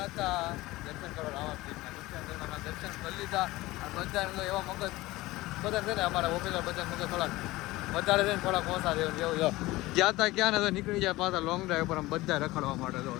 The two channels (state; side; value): quieter; right; 19.2 dB